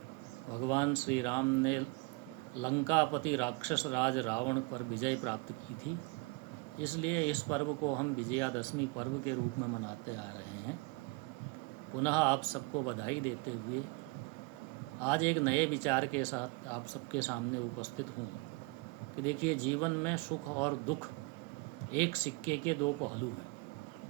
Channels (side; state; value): left; quieter; 27.3 dB